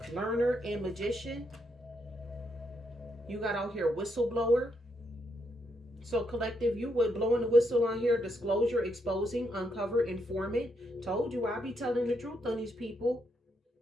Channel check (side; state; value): both; normal; correlation 0.78